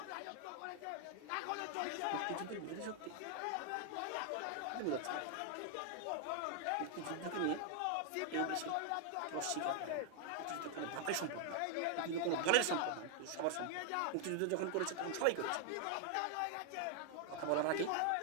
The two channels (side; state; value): both; different; correlation 0.00